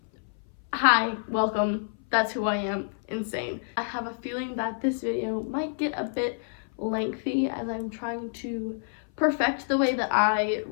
hi, welcome. That's who I am, insane. I have a feeling that this video might get a bit lengthy as I'm trying to perfect the way that I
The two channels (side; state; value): right; silent; 57 dB below the other